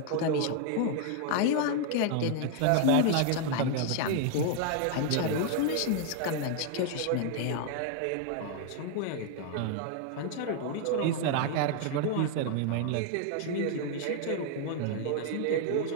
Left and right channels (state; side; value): different; both; correlation 0.00